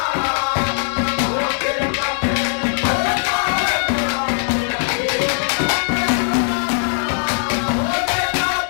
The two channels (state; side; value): silent; right; 64 dB below the other